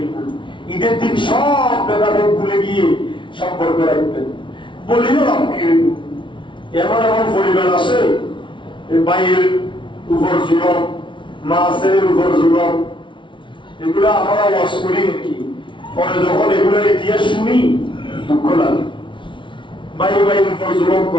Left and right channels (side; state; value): right; late; 0.24 ms